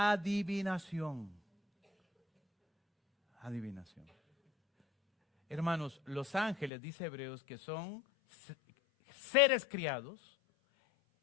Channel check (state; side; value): drops out; right; at 6.7 s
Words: Adivinación. Hermanos, los ángeles, dice Hebreos, que son seres criados,